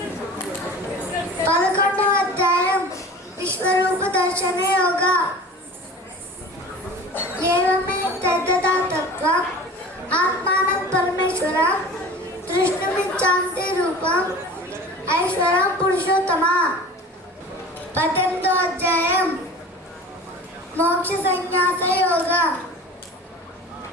11వ అధ్యాయం విశ్వరూప దర్శన యోగ. ఏవమే తద్గతాతత్వం ఆత్మానం పరమేశ్వరం దృష్టుమిచ్చాంతి రూపం ఐశ్వరం పురుషోత్తమ. 18వ అధ్యాయం మోక్ష సన్యాస యోగ.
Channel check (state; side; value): normal; both; correlation 0.39